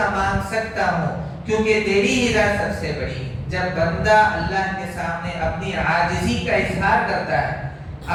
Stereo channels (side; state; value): both; identical; correlation 1.00